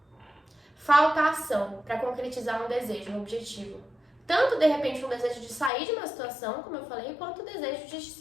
Falta ação para concretizar um desejo, um objetivo. Tanto, de repente, um desejo de sair de uma situação, como eu falei, quanto o desejo de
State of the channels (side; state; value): right; drops out; at 5.7 s